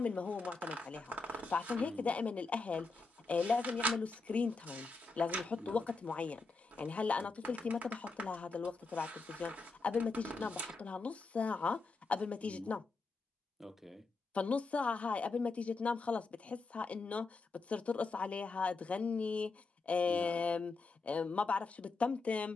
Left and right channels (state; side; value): quieter; right; 3.9 dB